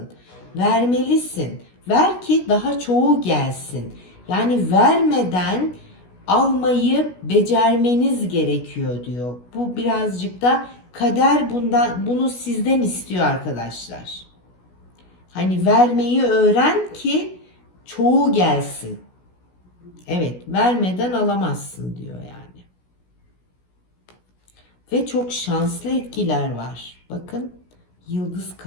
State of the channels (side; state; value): right; late; 16 ms